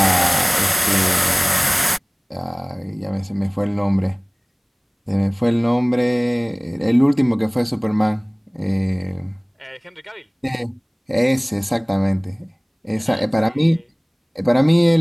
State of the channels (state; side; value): identical; both; correlation 1.00